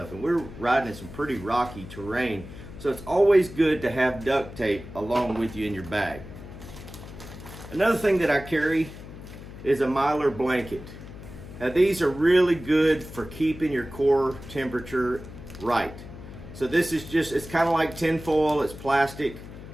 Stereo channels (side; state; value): left; noise; hum, 14 dB below the sound